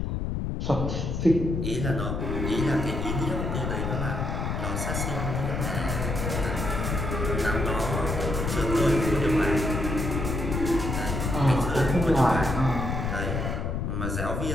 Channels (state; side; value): noise; left; rumble, 2 dB below the sound